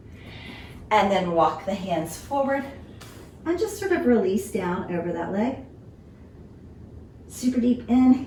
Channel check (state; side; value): identical; both; correlation 1.00